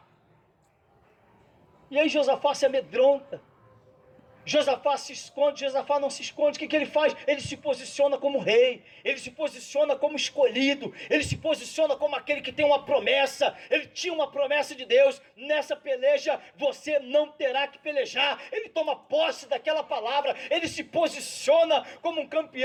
E aí Josafá se amedronta. Josafá se esconde. Josafá não se esconde. O que ele faz? Ele se posiciona como rei, ele se posiciona como escolhido, ele se posiciona como aquele que tem uma promessa. Ele tinha uma promessa de Deus: nessa peleja você não terá que pelejar. Ele toma posse daquela palavra, ele se posiciona como um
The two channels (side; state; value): both; identical; correlation 1.00